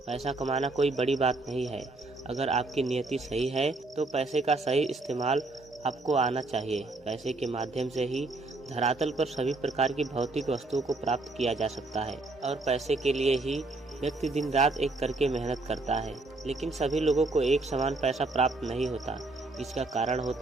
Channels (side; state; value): left; quieter; 3.2 dB